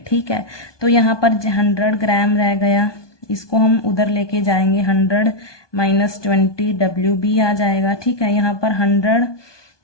ठीक है, तो यहाँ पर 100 ग्राम रह गया, इसको हम उधर लेके जाएंगे 100 माइनस 20 WB आ जाएगा। ठीक है, यहाँ पर 100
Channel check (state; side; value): late; right; 1.2 ms